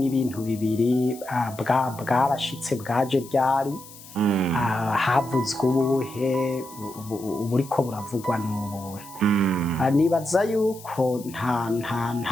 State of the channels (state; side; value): noise; left; hiss, 18 dB below the sound